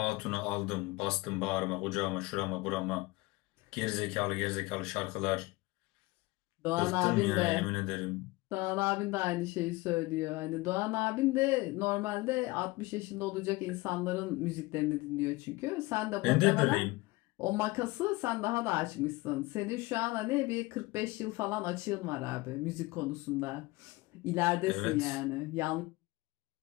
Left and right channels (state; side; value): quieter; right; 21.7 dB